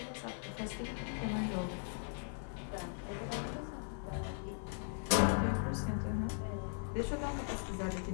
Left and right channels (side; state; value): right; silent; 52 dB below the other